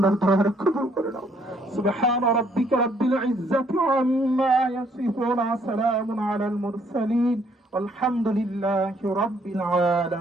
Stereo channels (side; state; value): both; normal; correlation 0.67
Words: দয়া কবুল করে নাও সুবহান রাব্বিকা রাব্বিল ইজ্জাতি আম্মা ইয়াসিফুন সালামুন আলাল মুরসালিন والحمد لله رب